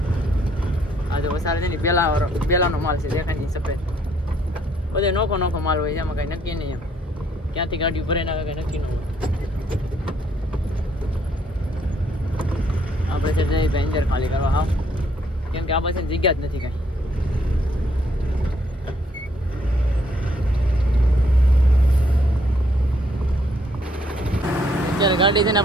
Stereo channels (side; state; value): both; normal; correlation 0.68